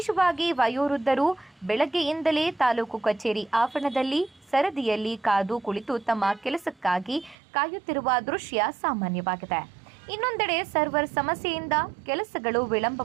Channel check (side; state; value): left; drops out; at 7.4 s